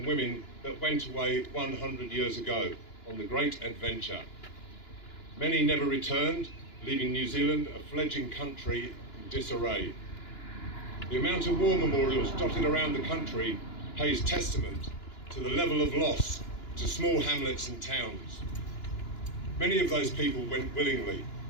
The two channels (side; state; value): right; late; 2.9 ms